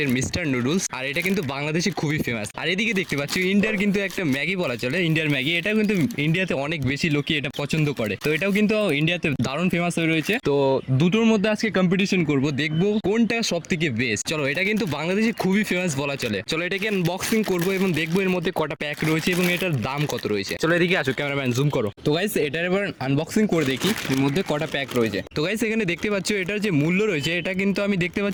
মিস্টার নুডলস, আর এটা কিন্তু বাংলাদেশে খুবই ফেমাস। আর এদিকে দেখতে পাচ্ছ ইন্ডিয়ার কিন্তু একটা ম্যাগি বলা চলে, ইন্ডিয়ার ম্যাগি। এটাও কিন্তু ইন্ডিয়াতে অনেক বেশি লোকই এটা পছন্দ করে, তো এটাও কিন্তু ইন্ডিয়াতে দারুণ ফেমাস হয়ে রয়েছে। তো দুটোর মধ্যে আজকে কম্পিটিশন করব, দেখবো কোনটা সব থেকে বেস্ট। চলো, এটা কিন্তু বাংলাদেশে খুবই ফেমাস বলা চলে। চলো এটাকে আনবক্সিং করবো এবং দেখবো এর মধ্যে কটা প্যাক রয়েছে এবং এটার দাম কত রয়েছে। চলো এদিকে আসো, ক্যামেরাম্যান জুম করো। তো গাইস এটার এবার আনবক্সিং করে দেখি এর মধ্যে কটা প্যাক রয়েছে। তো গাইস এখানে দেখতে পাচ্ছ এটার যে মূল্য রয়েছে, এটা কিন্তু আমি দেখতে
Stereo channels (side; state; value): both; identical; correlation 1.00